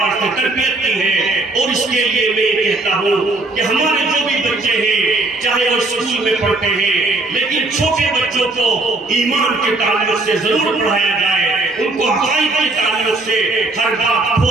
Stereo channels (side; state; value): left; quieter; 3.0 dB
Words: سے تربیت کی ہے۔ اور اس کے لیے میں یہ کہتا ہوں کہ ہمارے جو بھی بچے ہیں چاہے وہ اسکول میں پڑھتے ہیں، لیکن چھوٹے بچوں کو ایمان کے تعلق سے ضرور پڑھایا جائے، ان کو عقائد کے تعلق سے ہر بات